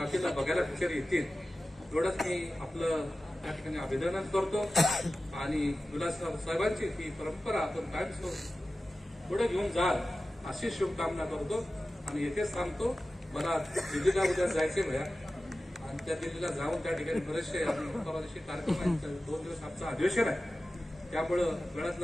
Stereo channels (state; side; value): normal; both; correlation 0.95